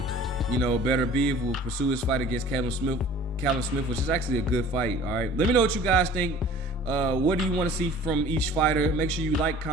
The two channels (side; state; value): both; normal; correlation 0.47